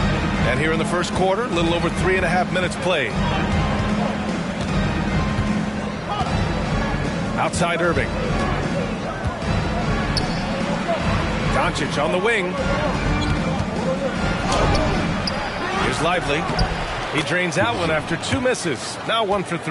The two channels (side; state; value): both; identical; correlation 1.00